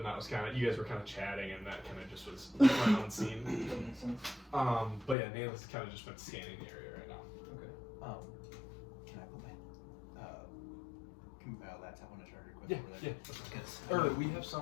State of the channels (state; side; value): drops out; right; at 5.2 s